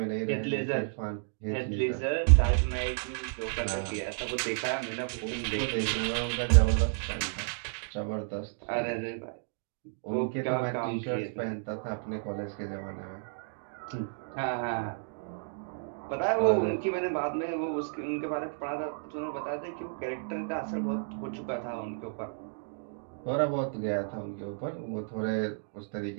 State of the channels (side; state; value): left; silent; digital silence